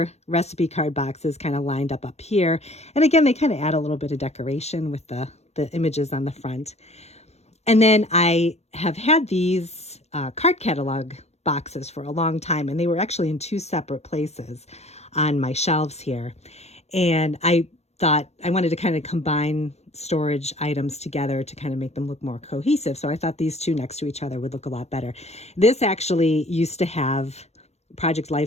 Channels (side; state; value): right; late; 0.31 ms